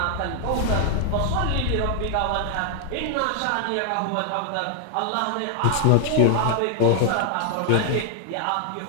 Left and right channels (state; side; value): different; both; correlation 0.00